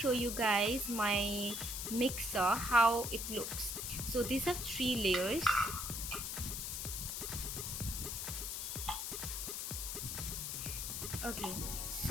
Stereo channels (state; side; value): noise; left; hiss, 4 dB below the sound